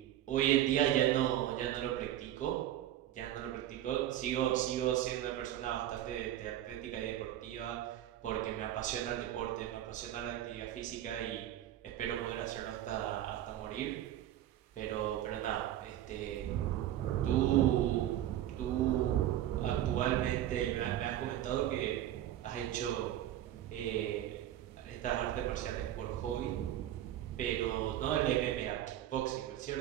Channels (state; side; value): quieter; left; 12.4 dB